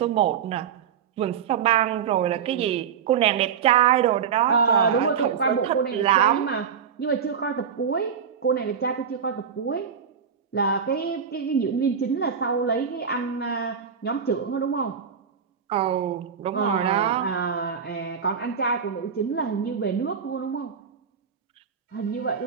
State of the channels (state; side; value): quieter; left; 7.2 dB